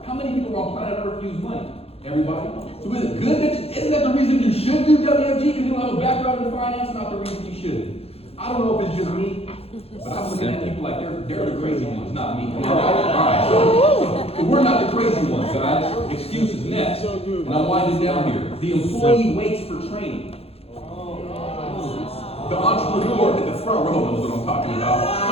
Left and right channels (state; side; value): late; right; 0.29 ms